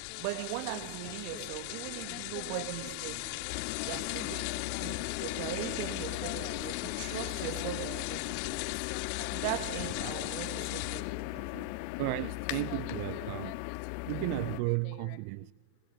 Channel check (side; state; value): both; different; correlation 0.00